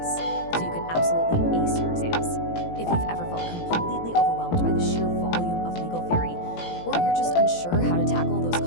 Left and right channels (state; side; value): late; right; 18 ms